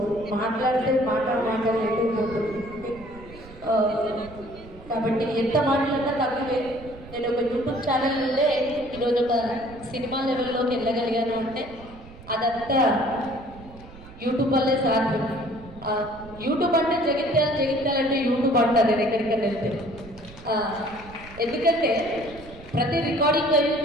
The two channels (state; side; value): noise; right; rumble, 18 dB below the sound